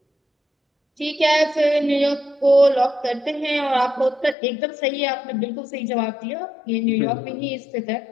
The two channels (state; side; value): drops out; right; at 4.4 s